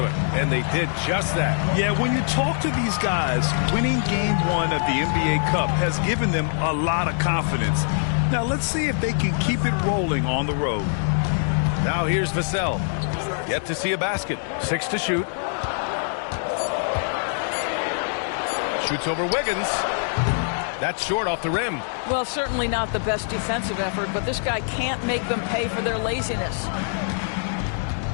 and they did just that. Yeah, when you talk to these guys, winning Game 1 of the NBA Cup has given them a lot of confidence. Now let's see if they can keep it rolling on the road. Now here's Vassell. Yet to see a basket. 6 to shoot. Shoots over Wiggins. That's short off the rim. Well, certainly not the best defensive effort, but this guy can't make them pay for their laziness.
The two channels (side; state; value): right; silent; digital silence